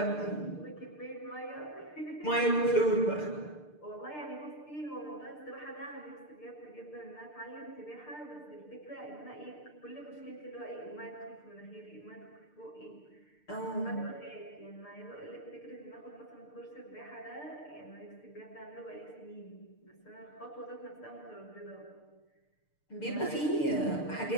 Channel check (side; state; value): right; late; 6.7 ms